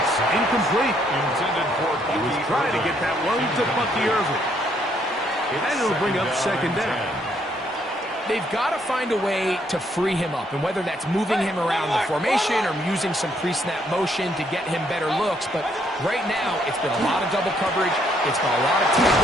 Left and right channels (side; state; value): both; normal; correlation 0.70